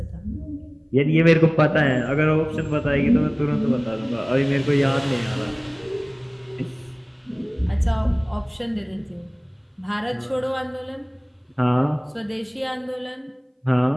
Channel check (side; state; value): both; identical; correlation 1.00